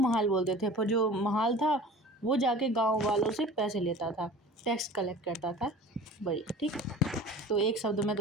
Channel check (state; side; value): normal; both; correlation 0.41